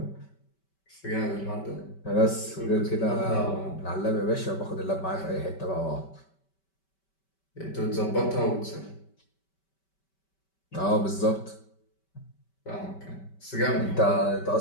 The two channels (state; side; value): late; right; 5.2 ms